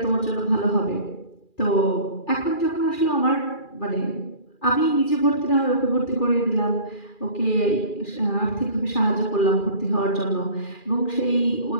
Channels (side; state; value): right; late; 2.4 ms